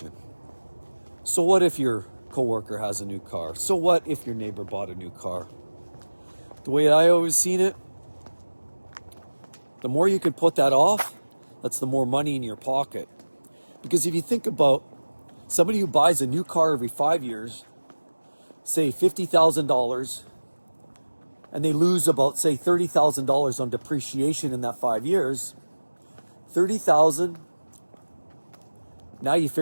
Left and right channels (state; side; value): inverted; both; correlation -1.00